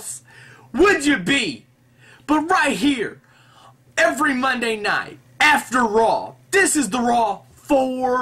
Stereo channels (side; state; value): both; identical; correlation 1.00